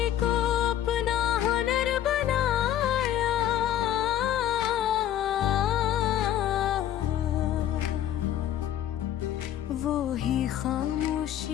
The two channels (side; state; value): right; quieter; 11.3 dB